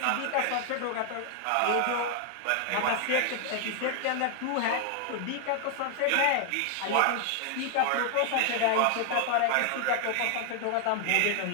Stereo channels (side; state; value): both; different; correlation 0.00